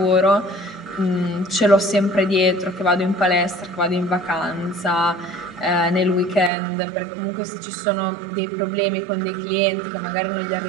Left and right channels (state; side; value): drops out; left; at 6.5 s